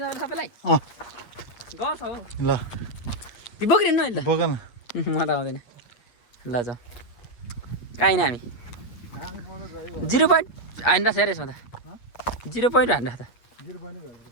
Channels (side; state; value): right; late; 8.4 ms